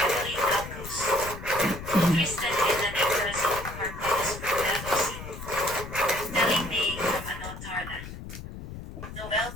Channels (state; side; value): noise; left; rumble, 11 dB below the sound